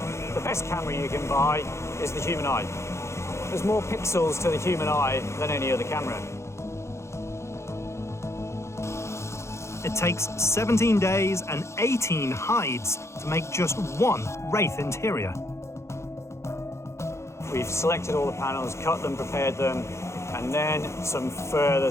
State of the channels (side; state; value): right; late; 0.13 ms